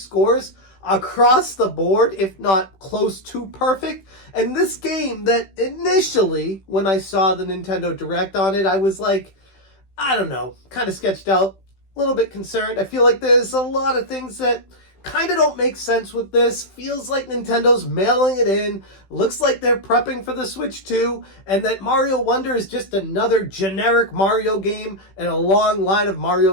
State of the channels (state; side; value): late; right; 15 ms